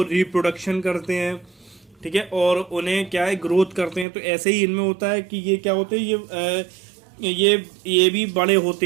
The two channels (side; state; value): left; drops out; at 4.0 s